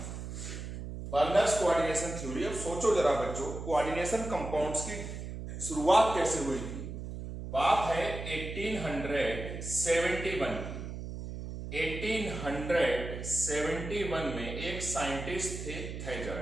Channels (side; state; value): right; noise; hum, 8 dB below the sound